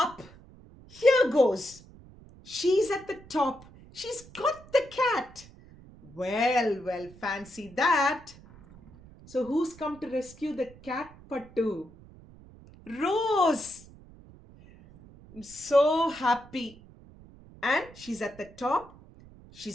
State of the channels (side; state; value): right; noise; rumble, 22 dB below the sound